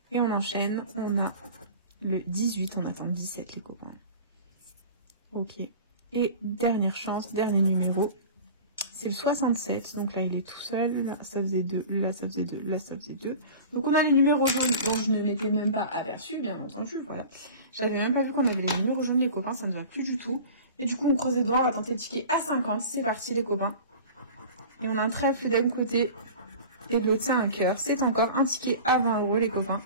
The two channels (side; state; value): both; inverted; correlation -0.38